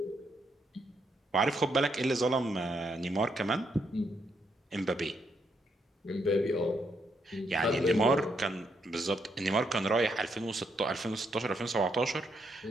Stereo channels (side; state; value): both; normal; correlation 0.77